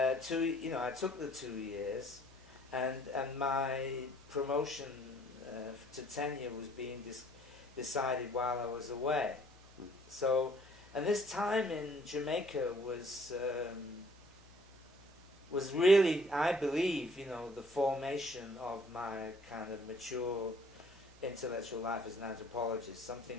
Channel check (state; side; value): noise; left; hum, 25 dB below the sound